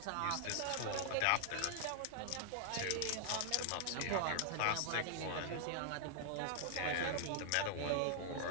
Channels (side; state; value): both; different; correlation -0.01